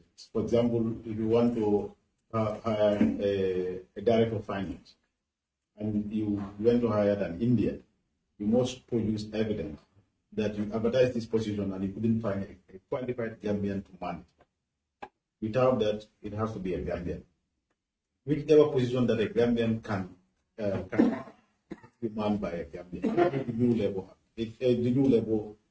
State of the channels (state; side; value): identical; both; correlation 1.00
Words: For example, if you want to hire a director of finance, and you went to hire an Indian, you must produce evidence that you advertised this position and you couldn't find a qualified Gambian to man it. Without that, it has to be a Gambian. Whichever position that a Gambian can be manned by a Gambian. The new labor